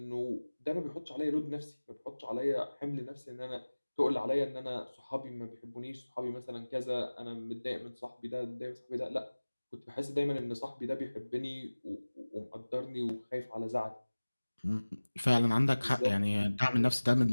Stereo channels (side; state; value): both; inverted; correlation -1.00